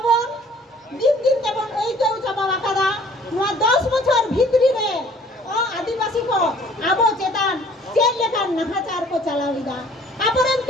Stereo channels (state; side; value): normal; both; correlation 0.55